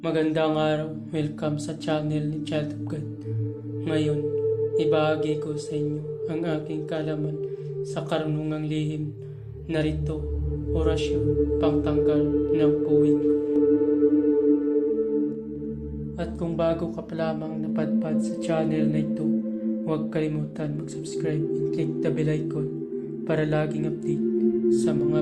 Magandang araw, welcome sa channel ni Child of God. Ngayon, ibahagi ko sa inyo ang aking kaalaman sa karunungang lihim, narito, orasyon, pangtanggal ng puwing. At kung bago ka pa lamang napadpad sa channel na ito, huwag kalimutan mag-subscribe and click the bell icon para laging update sa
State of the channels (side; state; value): both; identical; correlation 1.00